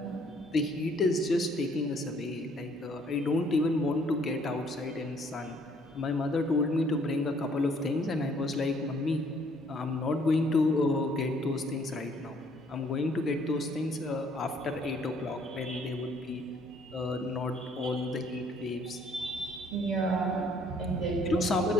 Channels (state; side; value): normal; both; correlation 0.63